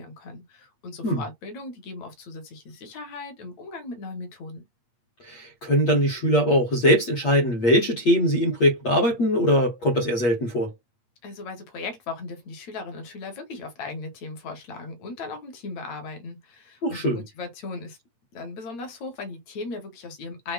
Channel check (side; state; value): right; late; 8.4 ms